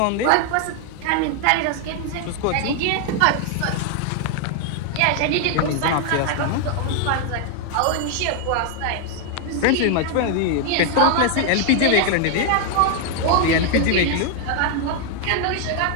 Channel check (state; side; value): different; both; correlation 0.00